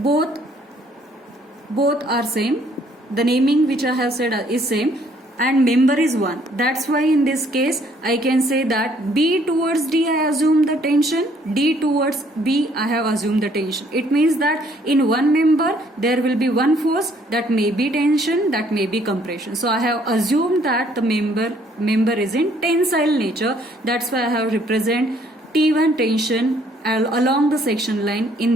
are same. The naming which I have said is same. and member is 1. That's why in this case I can say that B towards D I assume the tension, D towards B I have assumed the tension. It means that in one member there will be one force, that may be tension, that may be compression. So I have assumed that the member is in tensile nature. That's why I have represent T1 tension along the section line in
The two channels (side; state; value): both; normal; correlation 0.64